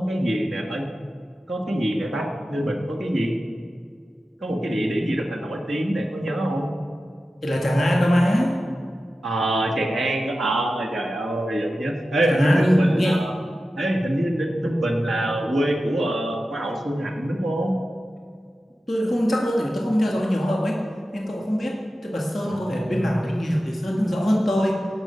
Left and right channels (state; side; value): normal; both; correlation 0.93